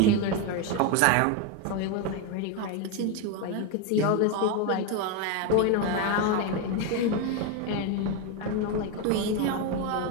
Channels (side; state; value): both; different; correlation 0.02